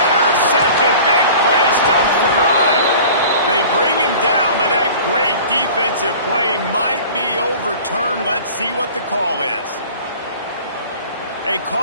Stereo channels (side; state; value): both; inverted; correlation -0.43